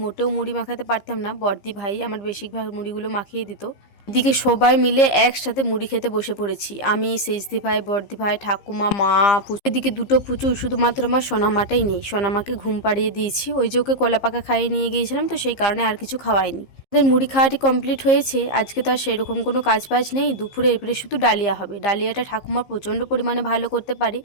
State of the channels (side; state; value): right; late; 15 ms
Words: মোটেও মুড়ি মাখাতে পারতাম না, বড়দি ভাই আমার বেশিরভাগ মুড়িগুলো মাখিয়ে দিত। এদিকে সবাই মিলে একসাথে মুড়ি খেতে বসে পড়েছি, আমি সেজদি ভাই বড়দি ভাই ঠাকুমা মা পুচু। এদিকে দুটো পুচু, শুধুমাত্র আমার সোনামাটাই নেই। সোনামাকে ঘুম পাড়িয়ে দিয়েছি, ওই যে ওকে কলা পাকা খাইয়ে নিয়ে গিয়েছিলাম, তো সেই কারণে আর কিছু খাওয়াইনি। আমাদের মুড়ি খাওয়াটি কমপ্লিট হয়েছে। আজকে তো আর সেরকম কোনো কাজ বাজ নেই, দুপুরে এবারে শুধু ডালিয়া হবে। ডালিয়াটা ঠাকুমা প্রচণ্ড পরিমাণে ভালো করতে পারে,